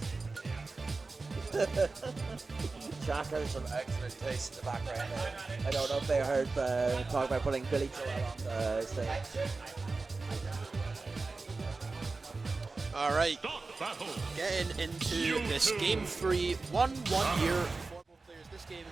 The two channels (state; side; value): quieter; left; 3.8 dB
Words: Jack has some excellent taste in the background there. I don't know if they heard talk about putting Billy Joel on the stage. All right, getting into this game 3, 1 year for both players. This game,